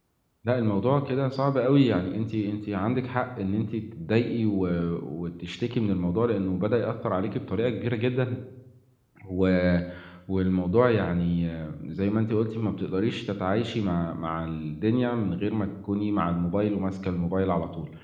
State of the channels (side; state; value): both; identical; correlation 1.00